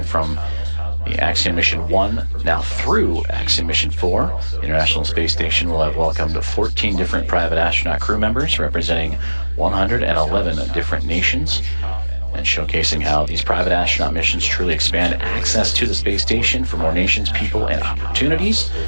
From the Axiom Mission 1 now through Axiom Mission 4, the International Space Station will have welcomed 14 different private astronaut crew members representing 111 different nations, and showcasing how these private astronaut missions truly expand access to the space station for more nations, people, and opportunities.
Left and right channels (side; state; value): both; inverted; correlation -1.00